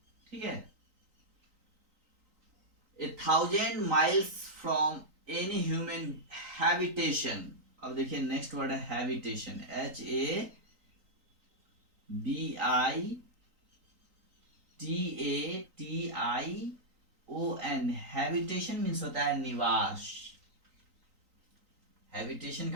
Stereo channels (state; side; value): late; left; 3.9 ms